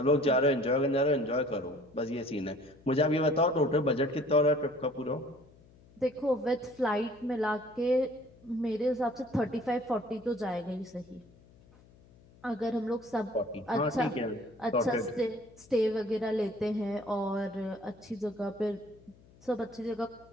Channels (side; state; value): left; noise; hum, 26 dB below the sound